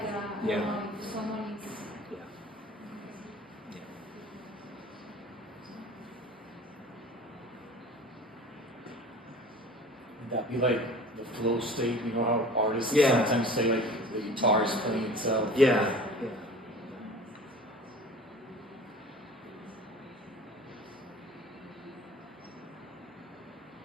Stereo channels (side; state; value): both; normal; correlation 0.42